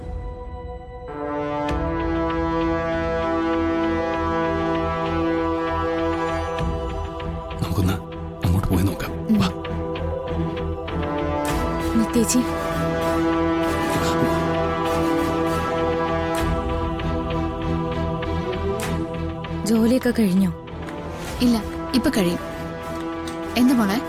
നമുക്കൊന്ന് അങ്ങോട്ട് പോയി നോക്കാം. നിത്യേച്ചി, ജോലിയൊക്കെ കഴിഞ്ഞോ? ഇല്ല, ഇപ്പൊ കഴിയും. എന്താ മോളെ?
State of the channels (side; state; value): both; identical; correlation 1.00